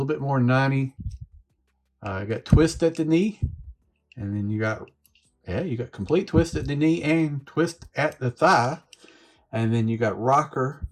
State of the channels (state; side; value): identical; both; correlation 1.00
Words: bit more than 90. You got twist at the knee. And then you got complete twist at the knee and twist at the thigh. And then you got rocker